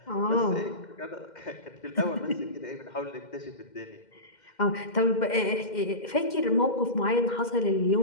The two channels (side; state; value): right; late; 2.1 ms